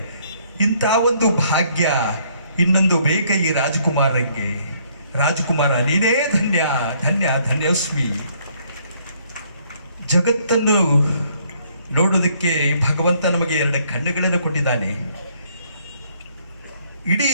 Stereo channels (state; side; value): inverted; both; correlation -0.66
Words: ಇಂಥ ಒಂದು ಭಾಗ್ಯ ಇನ್ನೊಂದು ಬೇಕ ಈ ರಾಜಕುಮಾರರಿಗೆ. ರಾಜಕುಮಾರ ನೀನೇ ಧನ್ಯ ಧನ್ಯ ಧನ್ಯೋಸ್ಮಿ. ಜಗತ್ತನ್ನು ನೋಡೋದಕ್ಕೆ ಭಗವಂತ ನಮಗೆ 2 ಕಣ್ಣುಗಳನ್ನು ಕೊಟ್ಟಿದ್ದಾನೆ. ಇಡೀ